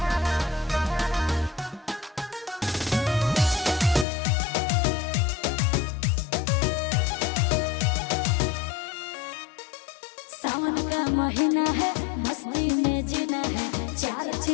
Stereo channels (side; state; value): right; drops out; at 4.0 s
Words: सावन का महीना है, मस्ती में जीना है, 4